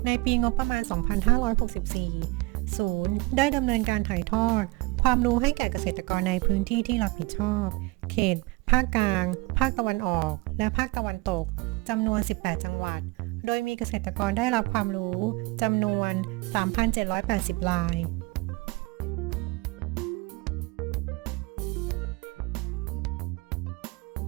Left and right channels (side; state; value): left; quieter; 23.9 dB